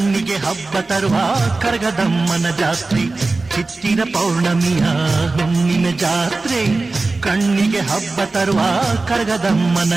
ಹಬ್ಬ ತರುವ ಕರಗದಮ್ಮನ ಜಾತ್ರೆ. ಚಿತ್ತಿರ ಪೌರ್ಣಮಿಯ ಹುಣ್ಣಿಮೆ ಜಾತ್ರೆ, ಕಣ್ಣಿಗೆ ಹಬ್ಬ ತರುವ ಕರಗದಮ್ಮನ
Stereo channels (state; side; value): quieter; left; 3.5 dB